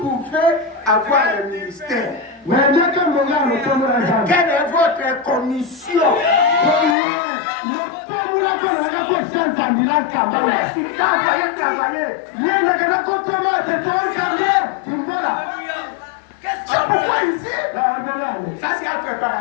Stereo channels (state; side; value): drops out; right; at 7.0 s